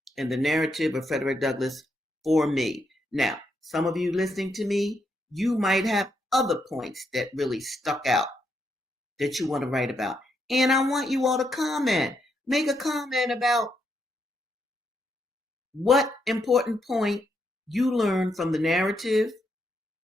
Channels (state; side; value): normal; both; correlation 0.79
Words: in the narrative of Frederick Douglass for me. Now, some of you listening to me, you might have other points that really stuck out that you want to write about. And I want you all to comment. Make a comment about what important point you learned from the narrative,